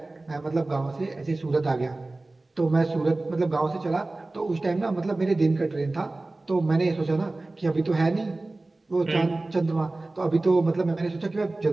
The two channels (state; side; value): quieter; left; 3.0 dB